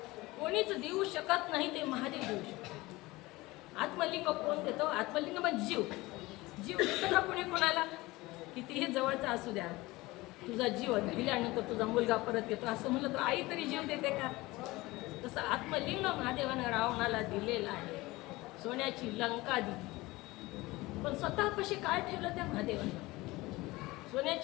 कोणीच देऊ शकत नाही ते महादेव देऊ शकतो. आत्मलिंग कोण देतो? आत्मलिंग म्हणजे जीव. जीव देतो का कोणी कोणाला? कितीही जवळचा असू द्या, तुझा जीव दिल्यानंतर तुझा मुलगा परत येतो असं म्हणलं तर आई तरी जीव देते का? तसं आत्मलिंग महादेवानं रावणाला दिलेलं आहे. सोन्याची लंका दिली, पण स्वतःपाशी काय ठेवलं त्या महादेवानं?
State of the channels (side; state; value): right; quieter; 20.6 dB